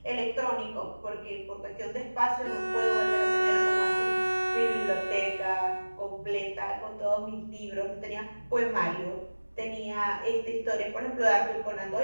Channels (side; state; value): both; inverted; correlation -1.00